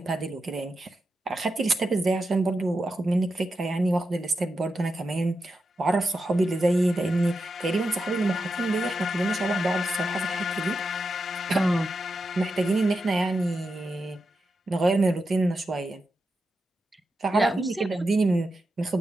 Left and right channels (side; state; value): both; normal; correlation 0.88